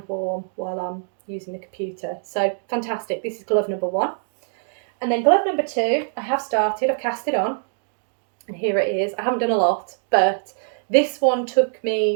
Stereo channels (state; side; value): silent; left; digital silence